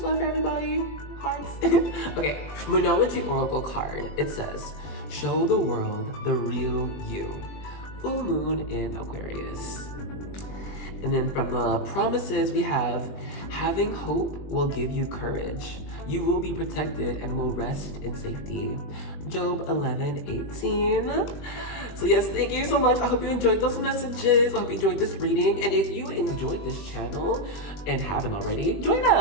love for everybody. Hearts. Okay, Moonology Oracle card. It says, show the world the real you. Full moon in Aquarius. And then from the promises we have, having hope will give you courage. You will be protected and will rest in safety. Job 11:18. So yes, thank you so much. I hope you enjoyed those messages. I hope you enjoyed this reading. And if you enjoyed this channel and haven't already, join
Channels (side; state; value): right; late; 21 ms